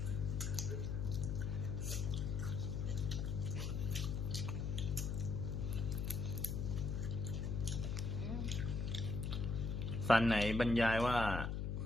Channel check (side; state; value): left; noise; hum, 1 dB below the sound